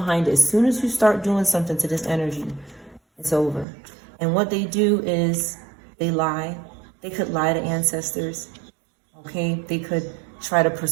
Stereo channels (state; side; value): drops out; left; at 3.7 s